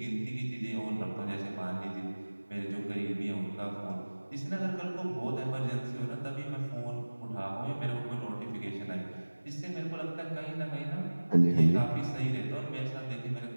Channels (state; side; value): inverted; both; correlation -1.00